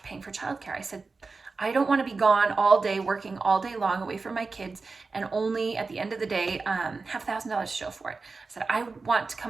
paying for childcare. I said, I don't want to be gone all day, working all day long away from my kids and only at the end of the day have $1,000 to show for it. I said,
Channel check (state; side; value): quieter; left; 4.1 dB